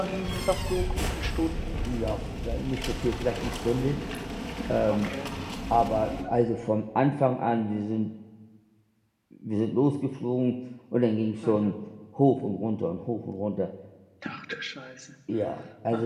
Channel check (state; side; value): identical; both; correlation 1.00